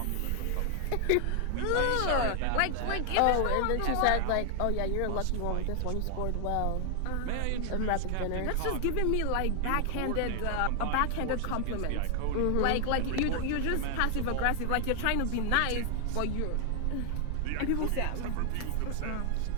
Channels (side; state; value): both; different; correlation 0.00